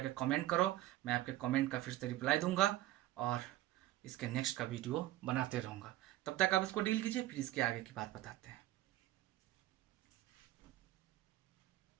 कमेंट करो, मैं आपके कमेंट का फिर से रिप्लाई दूंगा और इसके नेक्स्ट का वीडियो बनाते रहूँगा। तब तक आप इसको डील कीजिए, फिर इसके आगे की बात बताते हैं।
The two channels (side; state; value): left; quieter; 15.3 dB